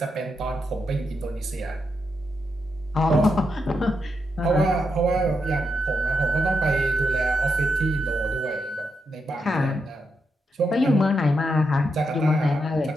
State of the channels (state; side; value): normal; both; correlation 0.84